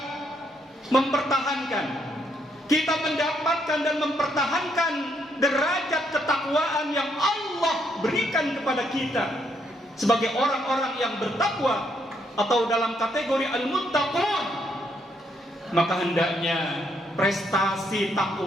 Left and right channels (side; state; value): both; normal; correlation 0.74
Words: mempertahankan, kita mendapatkan dan mempertahankan derajat ketakwaan yang Allah berikan kepada kita sebagai orang-orang yang bertakwa atau dalam kategori al-muttaqun, maka hendaknya prestasi